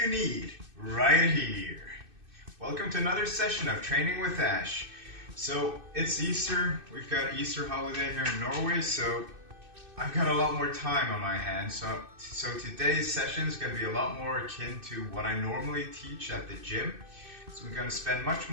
need right here. Welcome to another session of Training with Ash. So it's Easter. We've got Easter holiday here in Norway, so I've got a lot more time on my hands. So today's session is going to be a lot more akin to what I normally teach at the gym. So we're going to spend much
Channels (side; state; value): left; late; 2.6 ms